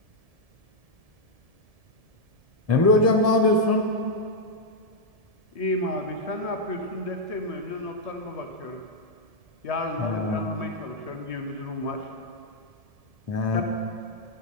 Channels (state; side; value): late; left; 1.7 ms